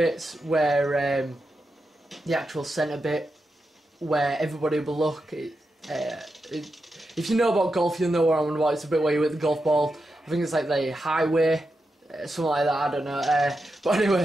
where the actual centre bit where everybody will look. If you know about golf, you'll know what I'm on about. It's a bit where you hit the golf ball. I think it's like the highway, something like that. I don't know. But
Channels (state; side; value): normal; both; correlation 0.88